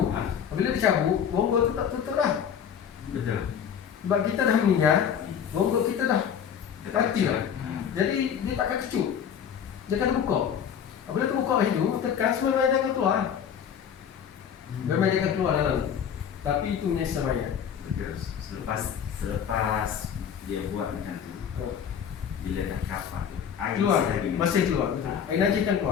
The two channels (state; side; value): quieter; right; 8.2 dB